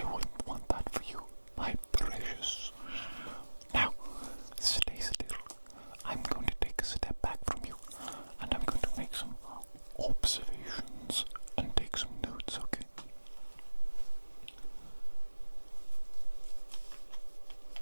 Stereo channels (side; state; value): both; inverted; correlation -1.00